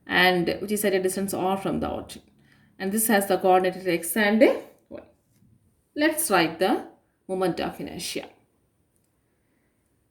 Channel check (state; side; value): identical; both; correlation 1.00